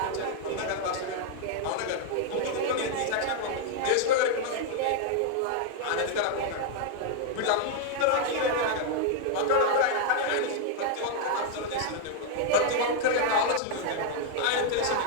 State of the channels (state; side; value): different; both; correlation 0.00